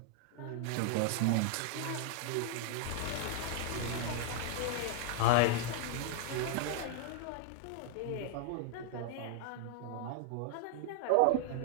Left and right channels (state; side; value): different; both; correlation 0.00